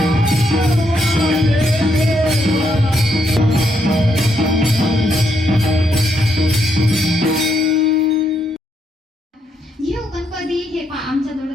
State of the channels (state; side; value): normal; both; correlation 0.76